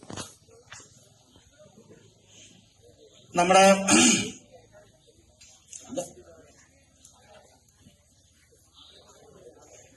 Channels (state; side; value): identical; both; correlation 1.00